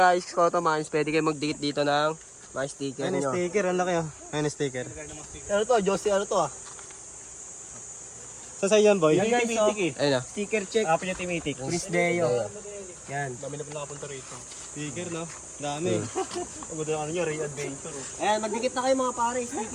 Koto Mines. Pwede kayo magdikit dito ng mga sticker nyo. sticker, ang laki, oh. Ayun, sticker. Ano to, Josie, ano to, ah? Saan yan, boy? Yan, guys, oh. Ayun na. Sticker check. Apo niya Timitik. Prince Deo. Yan. Dami na po nakapunta rito. Sticker, no? Dami. Ang ganda ng ano nyo, Ray Adventure, oh. Ayan, magdikit na kayo mga pare,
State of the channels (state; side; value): identical; both; correlation 1.00